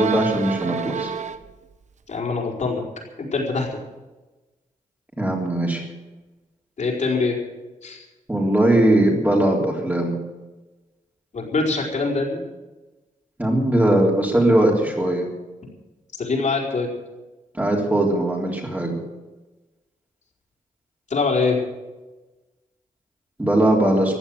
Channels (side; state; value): both; normal; correlation 0.75